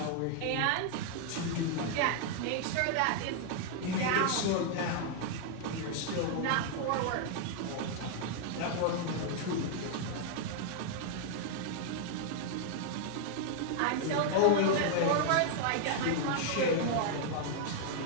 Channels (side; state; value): both; different; correlation 0.00